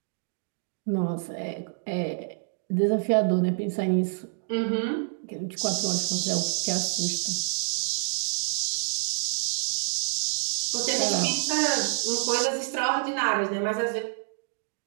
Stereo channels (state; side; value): silent; left; digital silence